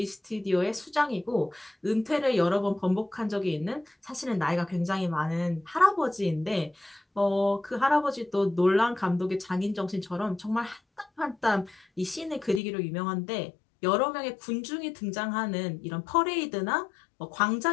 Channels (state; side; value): drops out; right; at 12.6 s